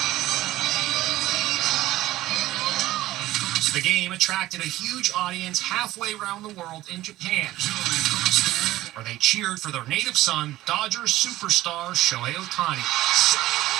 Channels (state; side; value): quieter; left; 16.0 dB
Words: The game attracted a huge audience halfway around the world in Japan, where they cheered for their native son, Dodgers superstar Shohei Ohtani.